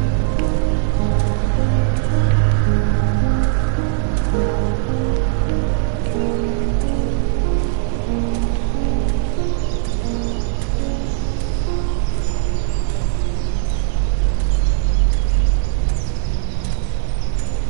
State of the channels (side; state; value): left; silent; digital silence